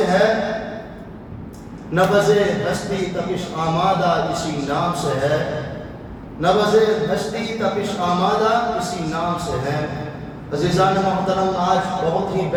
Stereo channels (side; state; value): both; identical; correlation 1.00